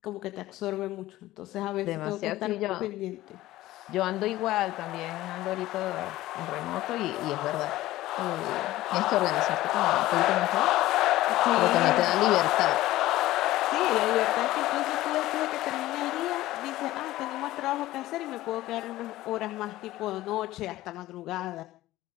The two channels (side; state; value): right; quieter; 16.2 dB